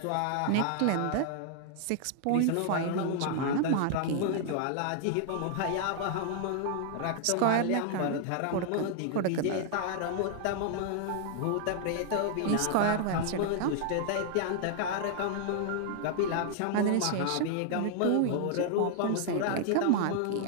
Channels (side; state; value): both; different; correlation 0.00